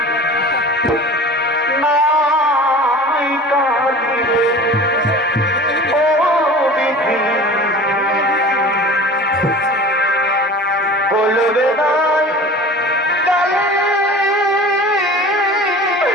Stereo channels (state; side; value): normal; both; correlation 0.39